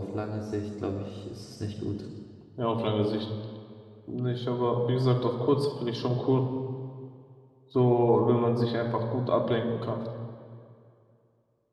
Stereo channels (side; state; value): both; identical; correlation 1.00